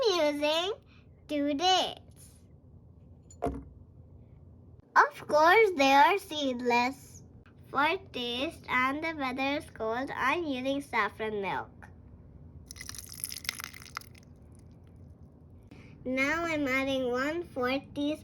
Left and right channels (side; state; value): both; identical; correlation 1.00